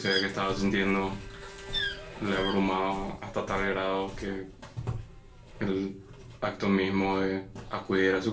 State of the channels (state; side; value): identical; both; correlation 1.00